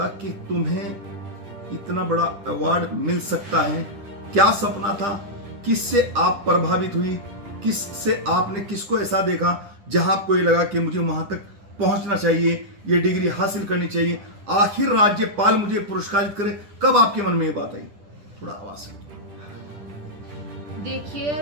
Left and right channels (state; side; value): late; left; 10 ms